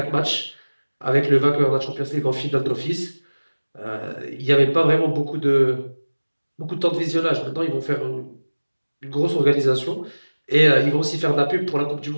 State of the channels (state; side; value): inverted; both; correlation -1.00